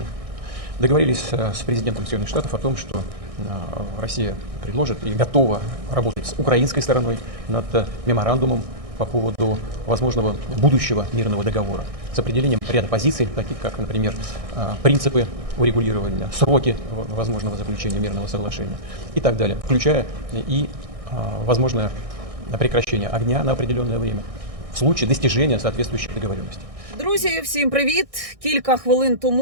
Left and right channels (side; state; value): left; late; 1.6 ms